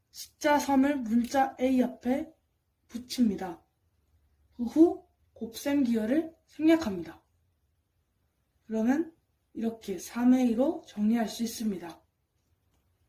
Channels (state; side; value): identical; both; correlation 1.00